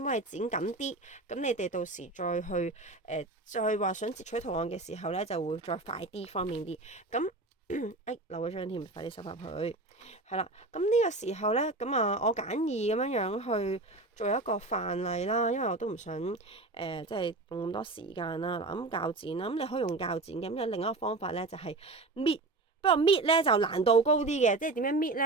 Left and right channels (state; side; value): quieter; left; 3.2 dB